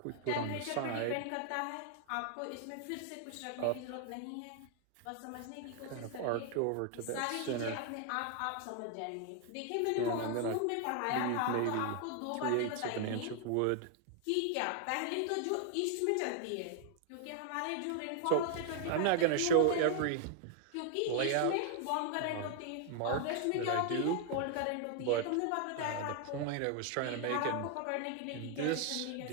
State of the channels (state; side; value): different; both; correlation 0.00